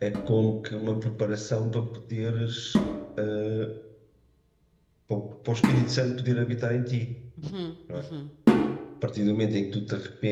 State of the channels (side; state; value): both; identical; correlation 1.00